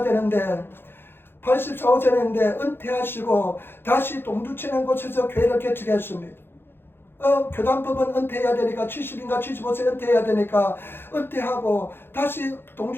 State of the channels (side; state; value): right; late; 0.10 ms